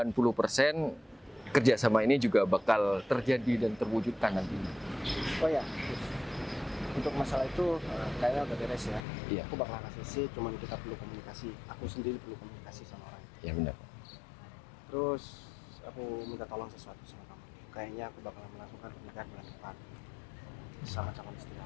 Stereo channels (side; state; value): right; drops out; at 9.0 s